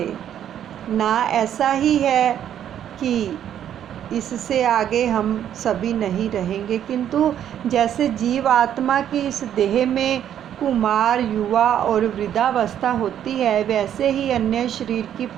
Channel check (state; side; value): quieter; left; 10.1 dB